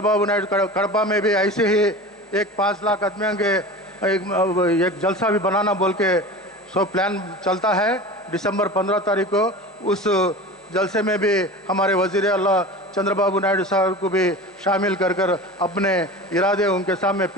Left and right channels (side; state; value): both; normal; correlation 0.33